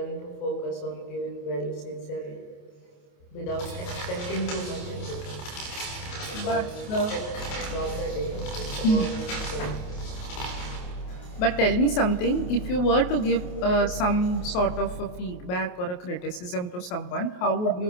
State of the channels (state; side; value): late; right; 28 ms